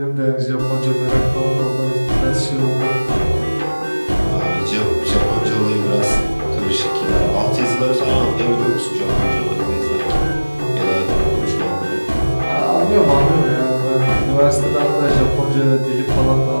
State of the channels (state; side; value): inverted; both; correlation -1.00